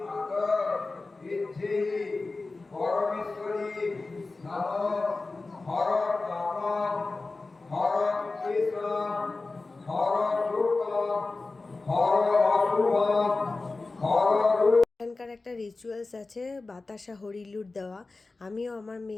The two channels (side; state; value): right; quieter; 3.5 dB